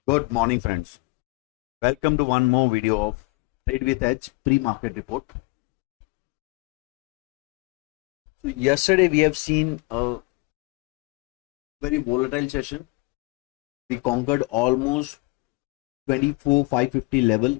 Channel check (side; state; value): right; quieter; 26.5 dB